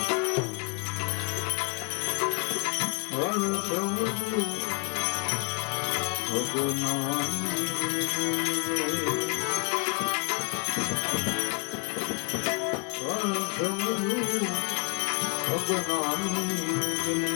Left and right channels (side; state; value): right; quieter; 33.7 dB